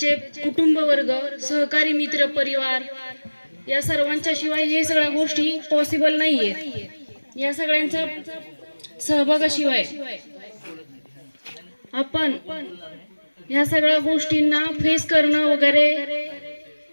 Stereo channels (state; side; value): inverted; both; correlation -1.00